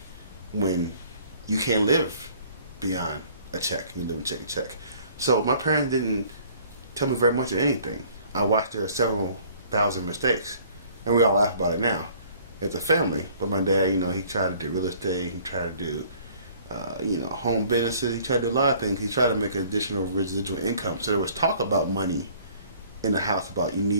when you can't live beyond a check. You live and check a check. So my parents didn't tell me very much of anything. I watched their several thousand mistakes, and we all laugh about it now as a family. But my dad, he tried to do real estate. He tried to do, home businesses. He tried to do a lot of things. He tried to make an additional residual income. So there was talk about money in the house about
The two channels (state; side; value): inverted; both; correlation -0.55